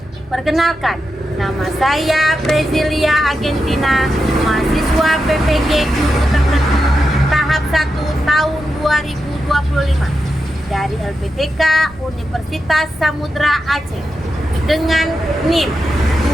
Perkenalkan, nama saya Brezilia Argentina, mahasiswa PPG Guru Tertentu tahap 1 tahun 2025 dari LPTK Universitas Samudra Aceh dengan NIM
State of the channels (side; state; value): both; normal; correlation 0.88